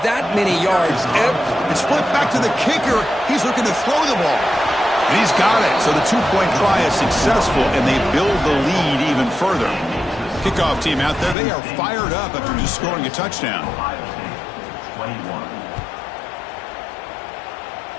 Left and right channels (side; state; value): right; drops out; at 11.4 s